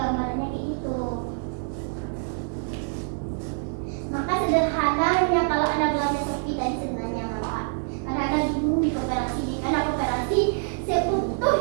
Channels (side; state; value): left; silent; digital silence